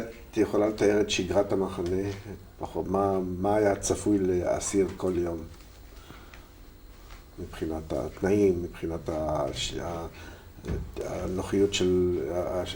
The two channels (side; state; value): both; identical; correlation 1.00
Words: יכולה לתאר את שגרת המחנה, פחות, מה היה צפוי לאסיר כל יום? מבחינת התנאים, מבחינת הנוחיות של,